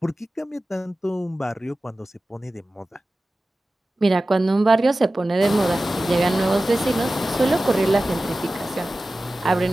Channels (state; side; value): normal; both; correlation 0.95